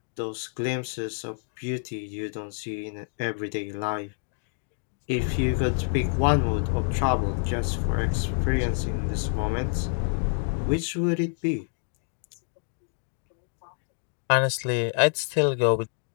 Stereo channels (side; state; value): right; silent; 60 dB below the other